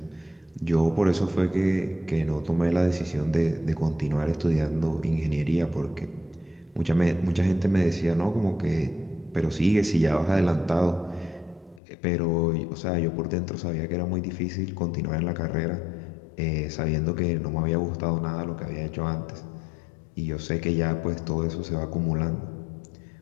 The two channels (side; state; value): right; drops out; at 11.8 s